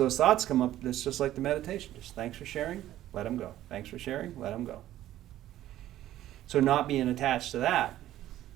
thoughts come up, it's just like the meditation. Just thanks for sharing, let them go. Thanks for sharing, let them go. So not being attached to that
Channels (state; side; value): quieter; left; 13.4 dB